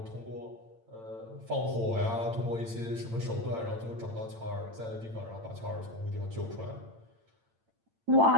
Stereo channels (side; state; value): left; late; 8.9 ms